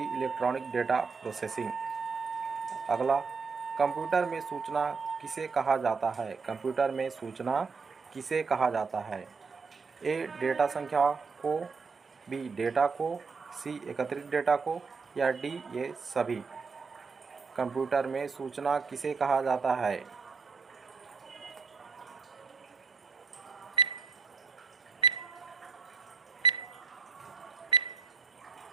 इलेक्ट्रॉनिक डेटा प्रोसेसिंग। अगला, कंप्यूटर में सूचना किसे कहा जाता है? कंप्यूटर में सूचना किसे कहा जाता है? ए डेटा संख्या को, बी डेटा को, सी एकत्रित डेटा को या डी ये सभी? कंप्यूटर में सूचना किसे कहा जाता है?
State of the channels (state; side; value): quieter; left; 5.0 dB